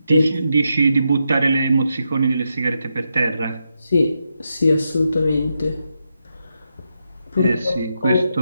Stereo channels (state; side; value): inverted; both; correlation -0.85